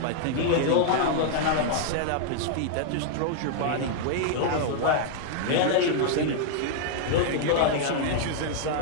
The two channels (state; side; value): different; both; correlation -0.01